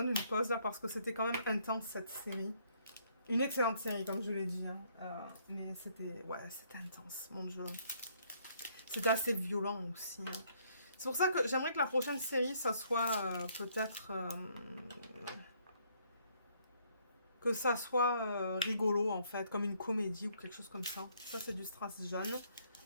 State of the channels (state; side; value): inverted; both; correlation -0.67